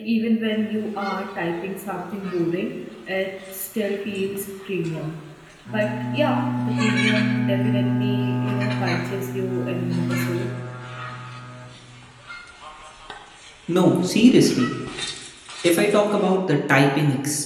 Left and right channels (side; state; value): both; identical; correlation 1.00